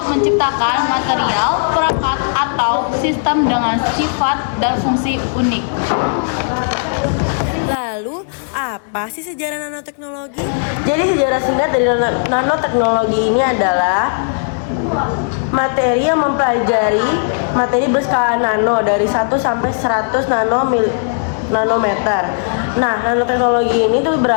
menciptakan material, perangkat, atau sistem dengan sifat dan fungsi unik. Lalu, apa sih sejarah nanoteknologi? Jadi sejarah singkat dari nanoteknologi ini adalah materi yang mempelajari materi berskala nano dari 1 sampai 100 nanometer. Nah, nanoteknologi ini tuh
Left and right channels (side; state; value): right; silent; digital silence